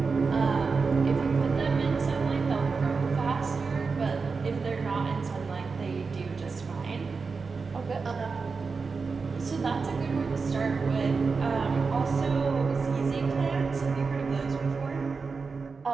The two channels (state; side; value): quieter; left; 4.7 dB